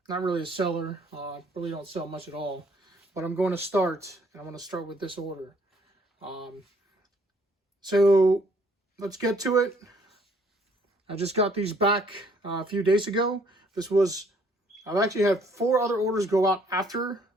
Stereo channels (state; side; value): normal; both; correlation 0.63